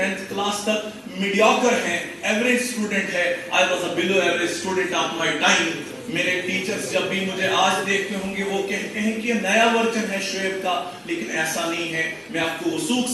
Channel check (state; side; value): identical; both; correlation 1.00